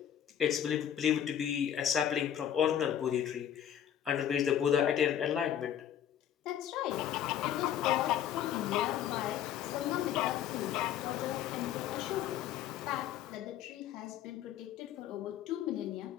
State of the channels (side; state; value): right; quieter; 10.1 dB